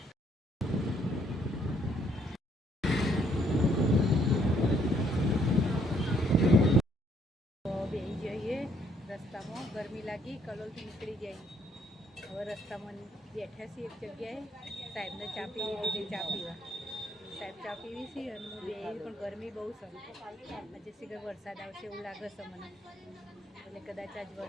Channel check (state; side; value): normal; both; correlation 0.68